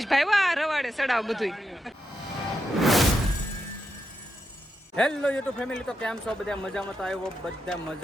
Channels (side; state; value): both; normal; correlation 0.85